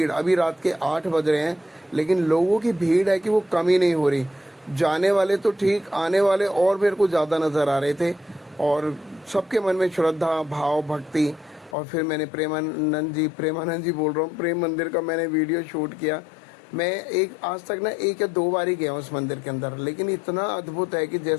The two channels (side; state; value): right; drops out; at 11.8 s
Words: अभी रात के 8 बज रहे हैं, लेकिन लोगों की भीड़ है कि वो कम ही नहीं हो रही। जाने वाले तो ठीक, आने वाले और मेरे को ज़्यादा नज़र आ रहे थे। और सबके मन में श्रद्धा, भाव, भक्ति। और फिर मैंने प्रेमानंद जी बोल रहा हूँ, प्रेम मंदिर का मैंने वीडियो शूट किया। मैं आज तक ना 1 या 2 बार ही गया हूँ उस मंदिर के अंदर, लेकिन इतना अद्भुत है कि